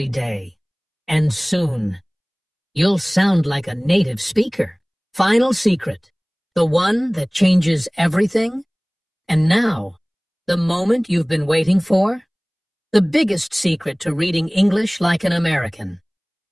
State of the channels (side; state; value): both; identical; correlation 1.00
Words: day, and soon you'll sound like a native speaker. Final secret, the one that changes everything. And now, the moment you've been waiting for, the biggest secret to reading English like an American.